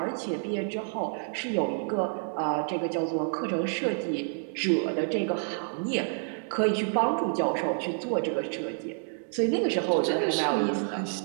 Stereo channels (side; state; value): left; silent; 59 dB below the other